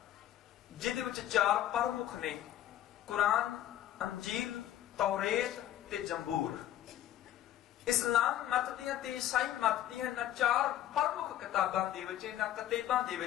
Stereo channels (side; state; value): right; quieter; 12.2 dB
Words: ਜਿਹਦੇ ਵਿੱਚ 4 ਪ੍ਰਮੁੱਖ ਨੇ, ਕੁਰਾਨ, ਅੰਜੀਲ, ਤੌਰੇਤ ਤੇ ਜ਼ਬੂਰ। ਇਸਲਾਮ ਮਤ ਦੀਆਂ ਤੇ ਈਸਾਈ ਮਤ ਦੀਆਂ ਇਹਨਾਂ 4 ਪ੍ਰਮੁੱਖ ਕਿਤਾਬਾਂ ਦੇ ਵਿੱਚ, ਇਹਨਾਂ ਕਿਤਾਬਾਂ ਦੇ